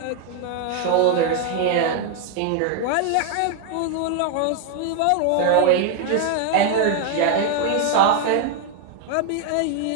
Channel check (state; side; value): different; both; correlation 0.01